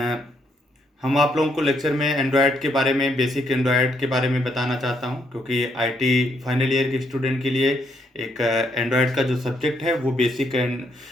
हम आप लोगों को लेक्चर में एंड्रॉयड के बारे में, बेसिक एंड्रॉयड के बारे में बताना चाहता हूं, क्योंकि आईटी फाइनल ईयर के स्टूडेंट के लिए एक एंड्रॉयड का जो सब्जेक्ट है वो बेसिक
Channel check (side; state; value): both; normal; correlation 0.74